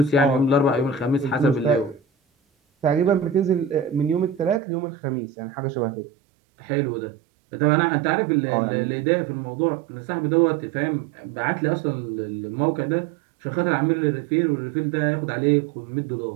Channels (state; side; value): drops out; left; at 4.6 s